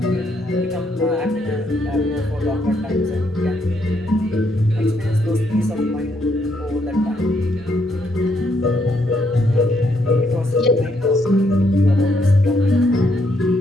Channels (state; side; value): normal; both; correlation 0.74